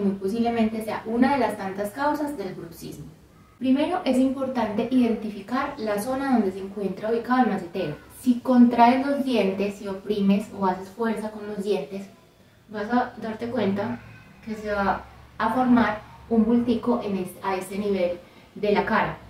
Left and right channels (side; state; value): both; identical; correlation 1.00